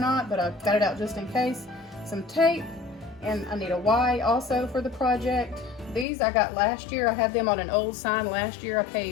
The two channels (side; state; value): right; drops out; at 6.1 s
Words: but I've got it out just in case. Some tape. And I need a Y also for the project. These I got last year. I had them on an old sign last year. I